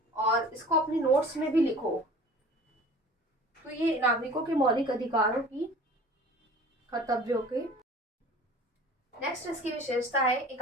और इसको अपनी नोट्स में भी लिखो। तो ये नागरिकों के मौलिक अधिकारों की, कर्तव्यों के। नेक्स्ट इसकी विशेषता है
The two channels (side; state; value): both; normal; correlation 0.44